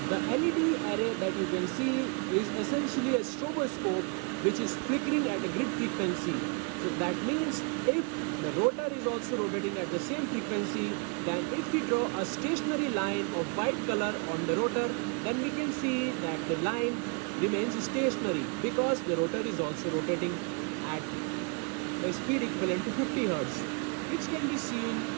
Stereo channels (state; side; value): quieter; left; 35.3 dB